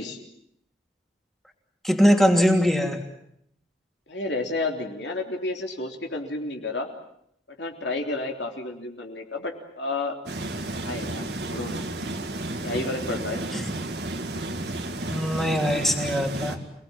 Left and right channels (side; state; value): both; normal; correlation 0.71